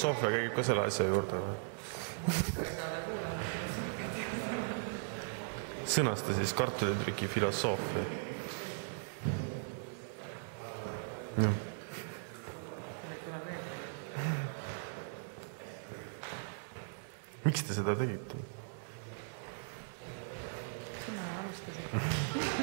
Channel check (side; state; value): left; silent; digital silence